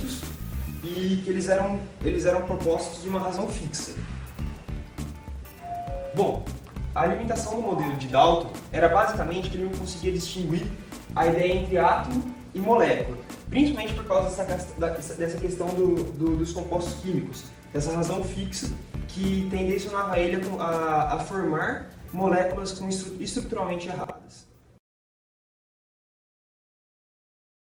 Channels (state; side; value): identical; both; correlation 1.00